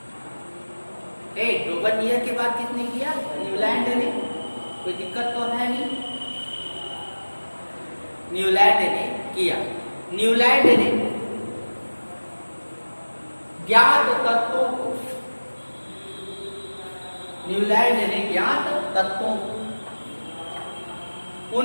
डोबरनियर के बाद किसने किया, न्यूलैंड ने। कोई दिक्कत तो है नहीं, न्यूलैंड ने किया। न्यूलैंड ने ज्ञात तत्वों को, न्यूलैंड ने ज्ञात तत्वों को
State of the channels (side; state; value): both; inverted; correlation -1.00